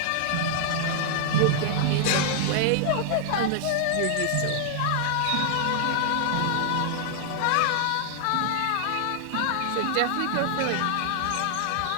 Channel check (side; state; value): both; different; correlation -0.01